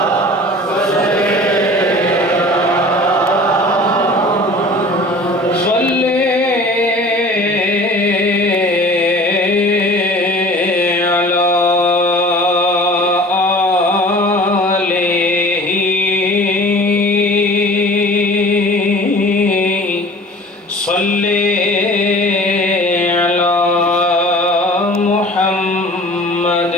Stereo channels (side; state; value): both; normal; correlation 0.44